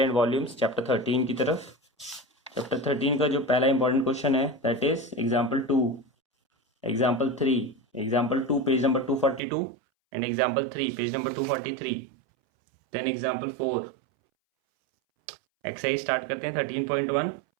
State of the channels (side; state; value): left; drops out; at 9.4 s